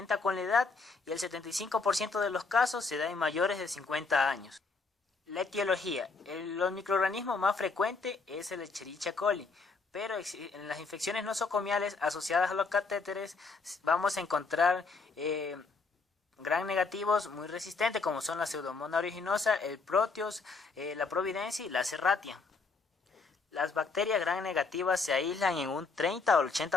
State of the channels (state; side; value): quieter; right; 4.3 dB